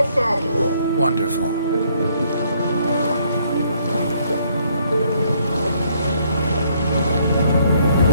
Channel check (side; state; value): both; inverted; correlation -0.68